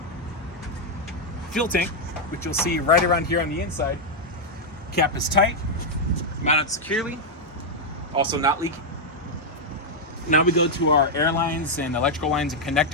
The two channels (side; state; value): both; normal; correlation -0.01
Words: Fuel tank, which you'll see right around here on the inside, cap is tight, mounted securely, also not leaking. Now we go to our air lines and electrical lines and